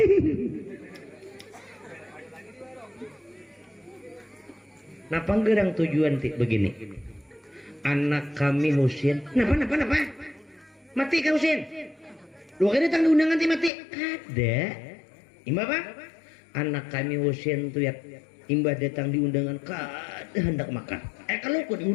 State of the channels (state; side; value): drops out; right; at 13.7 s